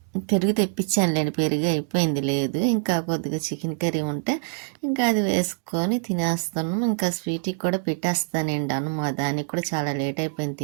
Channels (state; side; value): silent; left; digital silence